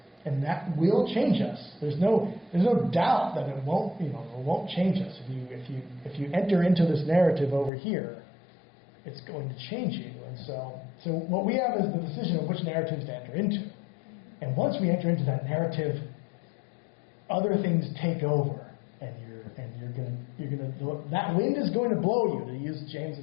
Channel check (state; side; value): drops out; right; at 7.7 s